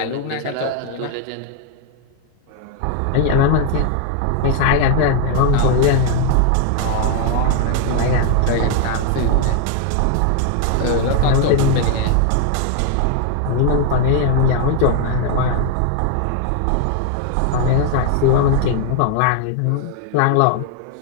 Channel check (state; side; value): different; both; correlation 0.00